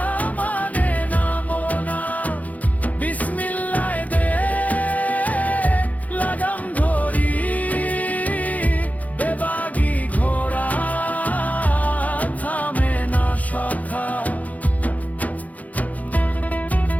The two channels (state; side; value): late; right; 0.075 ms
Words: মানে নামো না। বিসমিল্লাহ দে লাগাম ধরি, বেবাগি ঘোড়া থামে না সখা।